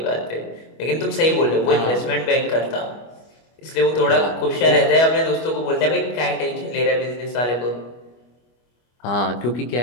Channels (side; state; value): right; late; 25 ms